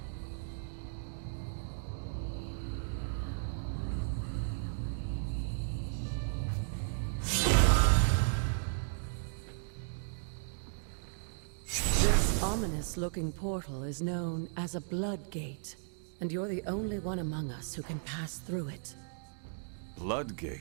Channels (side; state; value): left; silent; digital silence